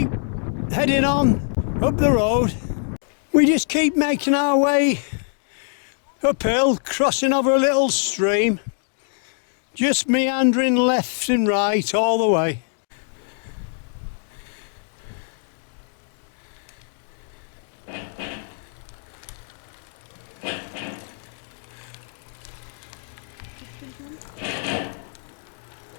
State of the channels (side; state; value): right; silent; digital silence